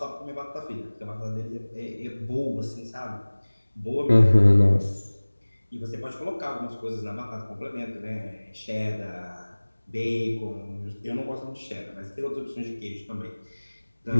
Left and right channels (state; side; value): inverted; both; correlation -1.00